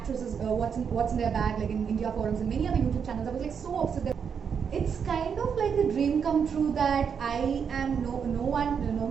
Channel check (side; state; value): left; quieter; 6.9 dB